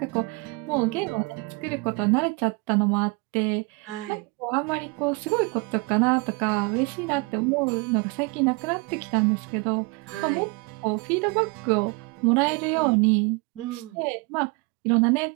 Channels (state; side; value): quieter; left; 28.5 dB